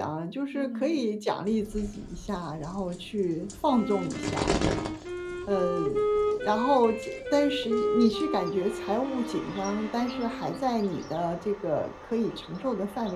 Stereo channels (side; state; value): both; identical; correlation 1.00